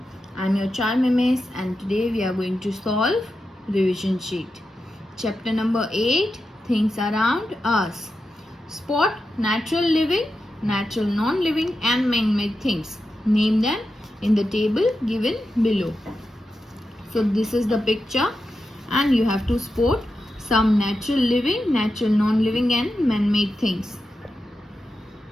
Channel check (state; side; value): normal; both; correlation 0.90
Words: I'm your charm miss, and today we are going to solve revision sheet. Chapter number 8, Things Around Us. Spot natural living, natural non-living and man-made things. Name them in the table given below. So this is the picture and you have to spot some natural living, natural non-living and man-made things.